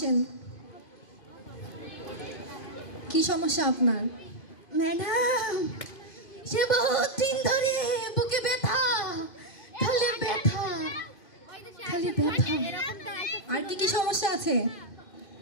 কি সমস্যা আপনার? ম্যাডাম, সে বহুত দিন ধরে বুকে ব্যথা, খালি ব্যথা, খালি ব্যথা। আর কি কি সমস্যা আছে?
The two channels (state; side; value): late; right; 2.5 ms